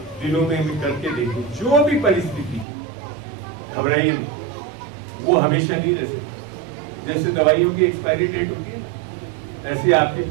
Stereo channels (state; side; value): drops out; left; at 2.7 s